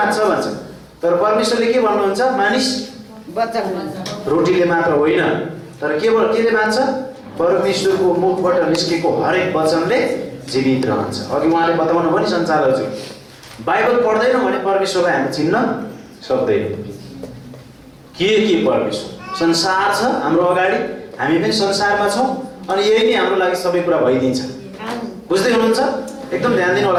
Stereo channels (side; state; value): both; identical; correlation 1.00